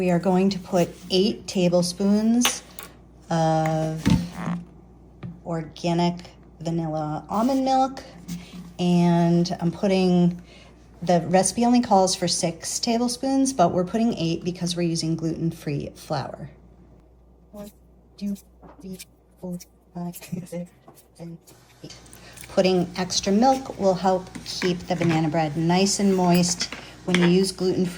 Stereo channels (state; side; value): identical; both; correlation 1.00